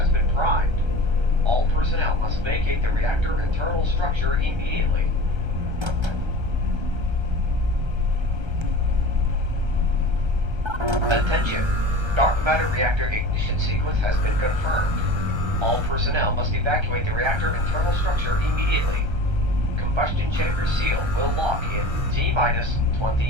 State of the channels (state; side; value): late; left; 1.3 ms